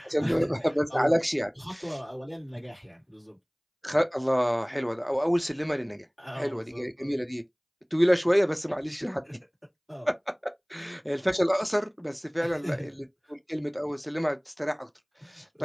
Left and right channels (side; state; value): both; identical; correlation 1.00